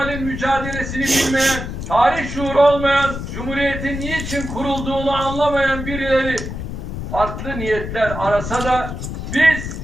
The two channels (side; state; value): left; noise; rumble, 7 dB below the sound